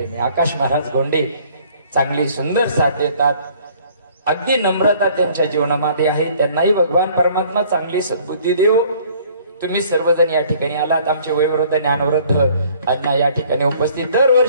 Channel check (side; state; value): both; inverted; correlation -0.57